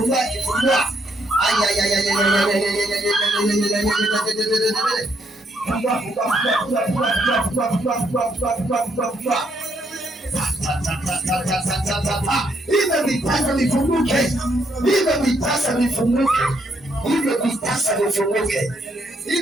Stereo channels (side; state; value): both; normal; correlation 0.73